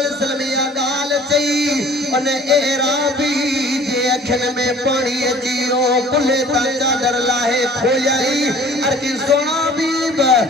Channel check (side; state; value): both; normal; correlation 0.50